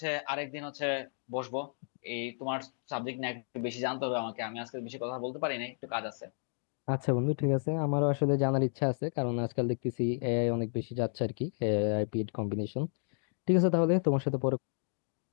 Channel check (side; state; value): right; silent; 56 dB below the other